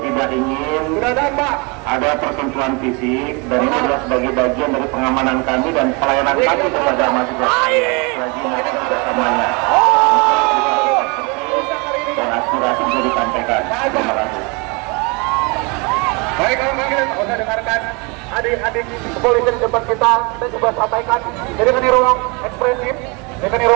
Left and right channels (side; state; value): left; quieter; 30.0 dB